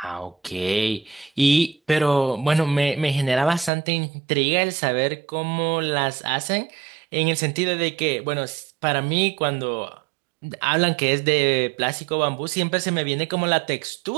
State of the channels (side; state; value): left; drops out; at 3.7 s